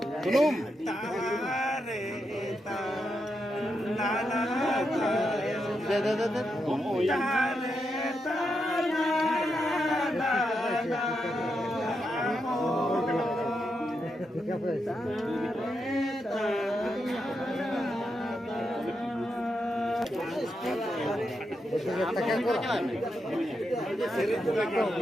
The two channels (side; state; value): both; normal; correlation 0.84